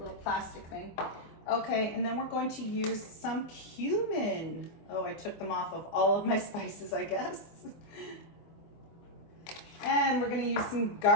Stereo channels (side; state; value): right; late; 25 ms